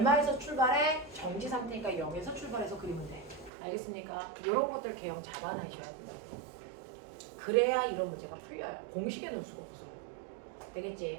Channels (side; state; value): left; drops out; at 3.5 s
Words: 출발해? 정지 상태니까 0에서 출발해서 그리면 돼. 알겠습니까? 이런 것들 개형 잡아놔셔야 돼요. 그래야 이런 문제가 풀려요. 공식에 넣을 수가 없어.